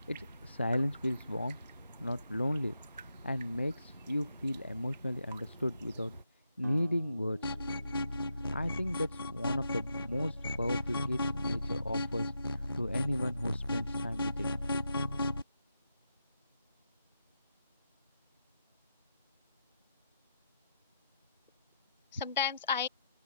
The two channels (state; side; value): inverted; both; correlation -0.85